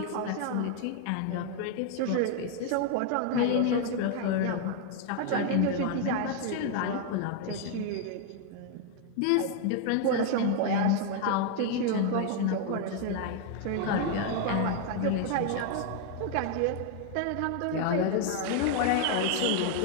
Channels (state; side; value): different; both; correlation 0.00